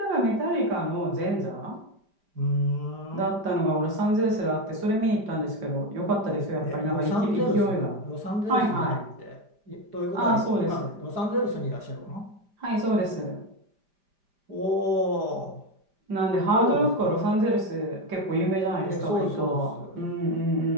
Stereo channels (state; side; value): late; left; 5.0 ms